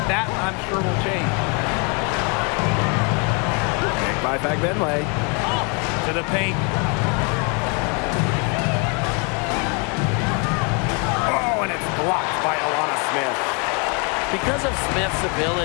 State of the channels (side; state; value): right; quieter; 33.5 dB